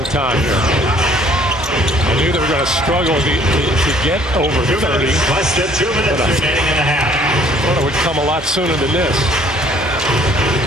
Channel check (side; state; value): both; normal; correlation 0.58